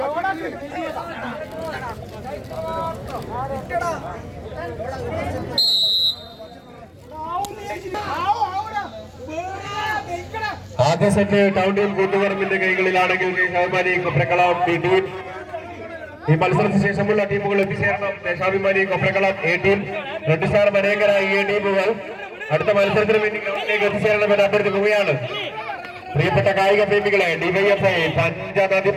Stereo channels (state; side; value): identical; both; correlation 1.00